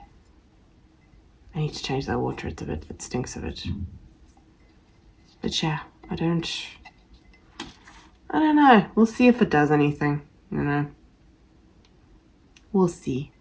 I need to change that water, it stinks of it. But yeah, I don't know. We'll see if it does anything, you know. We'll see.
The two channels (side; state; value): both; identical; correlation 1.00